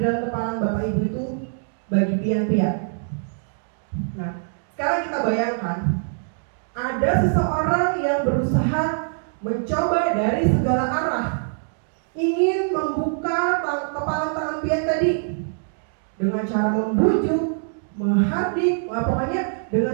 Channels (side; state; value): left; silent; digital silence